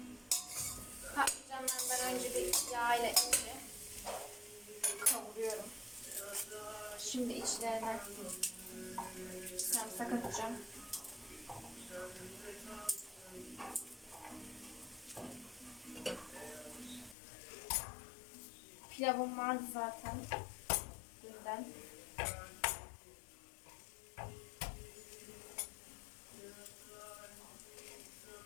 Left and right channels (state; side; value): drops out; right; at 17.2 s